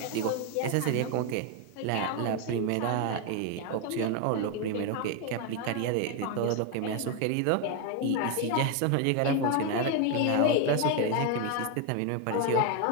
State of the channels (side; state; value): both; different; correlation 0.01